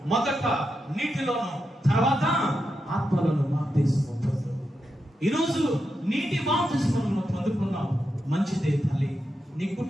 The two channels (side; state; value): both; normal; correlation 0.87